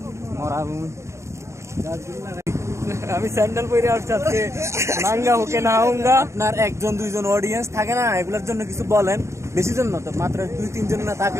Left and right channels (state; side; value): late; left; 0.14 ms